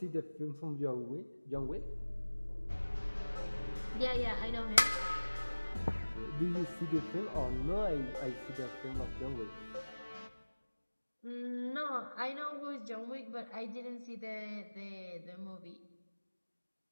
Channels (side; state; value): both; inverted; correlation -1.00